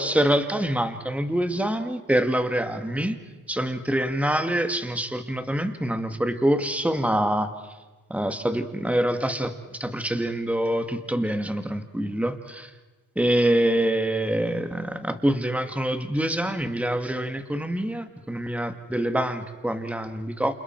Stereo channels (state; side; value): normal; both; correlation 0.85